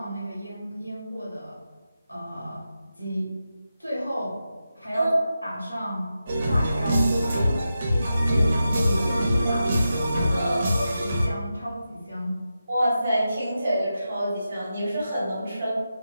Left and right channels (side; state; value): both; inverted; correlation -0.89